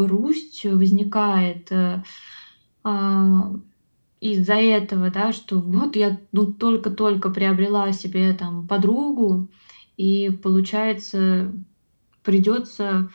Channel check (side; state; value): both; inverted; correlation -1.00